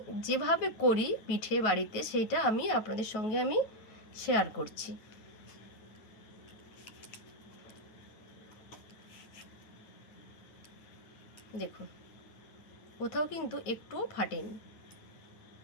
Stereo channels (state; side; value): late; right; 9.3 ms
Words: যেভাবে করি পিঠে বাড়িতে সেটা আমি আপনাদের সঙ্গে আমি শেয়ার করছি। দেখুন কোথাও কিন্তু একটুও ফাটেনি।